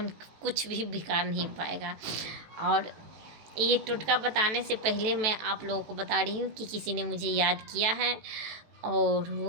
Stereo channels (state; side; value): late; left; 18 ms